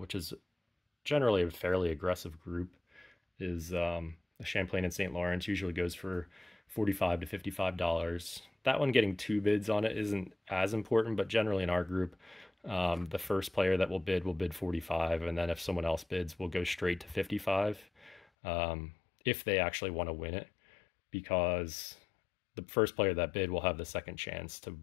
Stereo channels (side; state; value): right; drops out; at 18.2 s